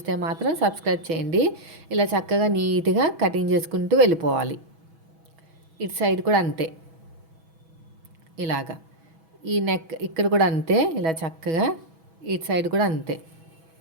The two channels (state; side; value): late; left; 6.1 ms